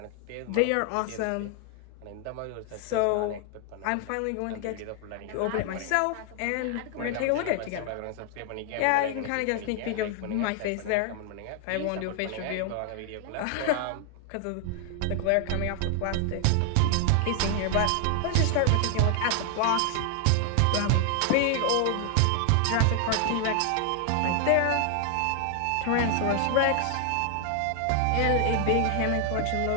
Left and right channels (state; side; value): different; both; correlation 0.00